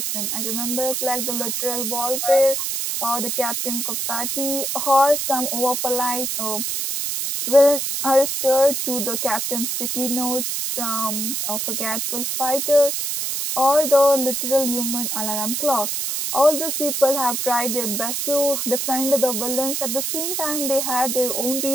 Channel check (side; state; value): right; noise; hiss, 1 dB below the sound